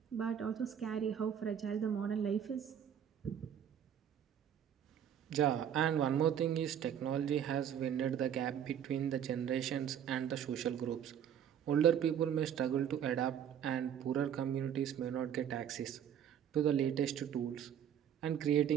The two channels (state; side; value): quieter; left; 9.2 dB